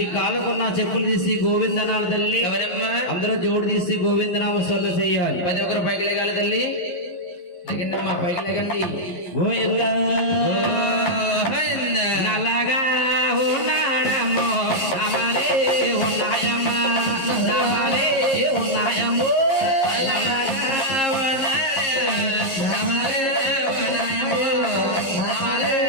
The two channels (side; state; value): right; late; 11 ms